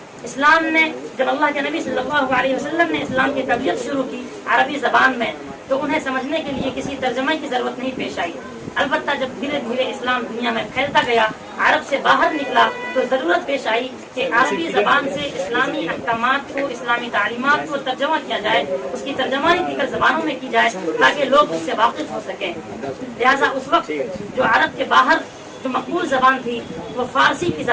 اسلام نے، جب اللہ کے نبی صلی اللہ علیہ وسلم نے اسلام کی تبلیغ شروع کی عربی زبان میں، تو انہیں سمجھنے کے لیے کسی ترجمے کی ضرورت نہیں پیش آئی۔ البتہ جب دھیرے دھیرے اسلام دنیا میں پھیلتا گیا، عرب سے باہر نکلا، تو ضرورت پیش آئی کہ عربی زبان سے اسلامی احکامات کو، اسلامی تعلیمات کو ترجمہ کیا جائے، اس کی ترجمانی دیگر زبانوں میں کی جائے تاکہ لوگ اس سے واقف ہو سکیں۔ لہٰذا اس وقت جو عرب کے باہر جو مقبول زبان تھی وہ فارسی کی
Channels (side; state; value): both; identical; correlation 1.00